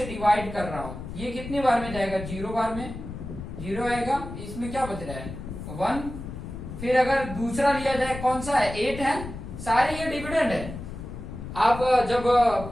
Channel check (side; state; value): left; noise; rumble, 10 dB below the sound